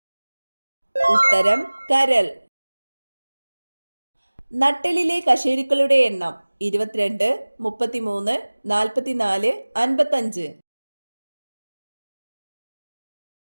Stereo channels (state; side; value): inverted; both; correlation -1.00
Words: ഉത്തരം കരൾ. നട്ടെല്ലിലെ കശേരുക്കളുടെ എണ്ണം: 22, 33, 44, 55.